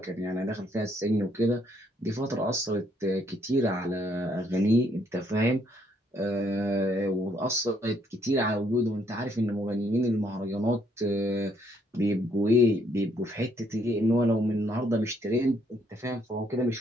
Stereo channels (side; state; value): both; normal; correlation 0.70